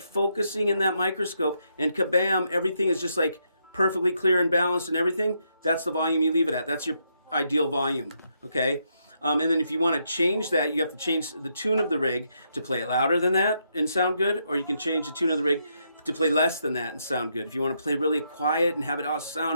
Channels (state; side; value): inverted; both; correlation -0.78